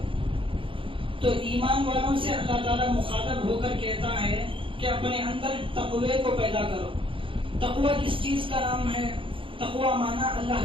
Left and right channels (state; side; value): late; left; 0.25 ms